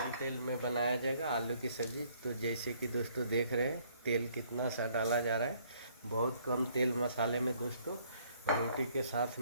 तेल में बनाया जाएगा आलू की सब्ज़ी। तो जैसे कि दोस्तों देख रहे हैं तेल कितना सा डाला जा रहा है, बहुत कम तेल मसाले में दोस्तों रोटी के साथ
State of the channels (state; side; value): inverted; both; correlation -0.64